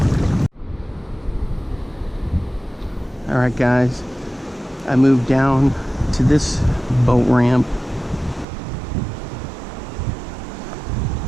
All right, guys, I moved down to this boat ramp.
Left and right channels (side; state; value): left; drops out; at 8.5 s